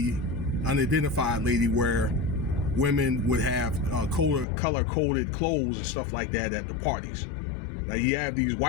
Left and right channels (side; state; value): right; drops out; at 4.5 s